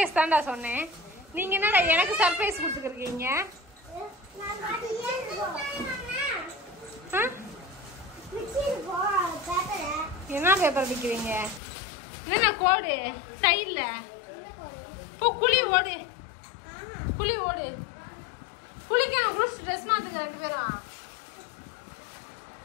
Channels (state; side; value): drops out; right; at 11.6 s